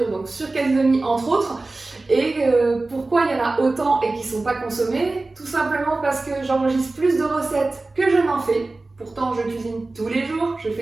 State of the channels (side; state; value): left; quieter; 3.3 dB